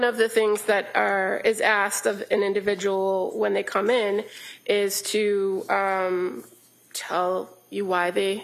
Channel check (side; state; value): both; identical; correlation 1.00